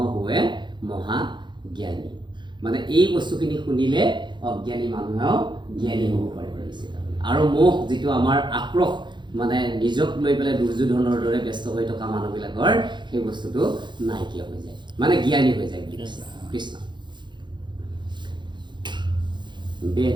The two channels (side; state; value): left; late; 0.22 ms